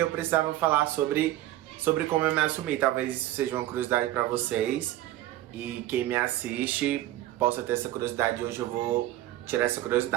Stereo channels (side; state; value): left; quieter; 14.7 dB